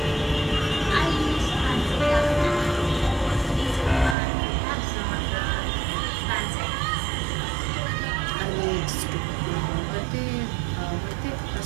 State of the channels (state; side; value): drops out; left; at 4.2 s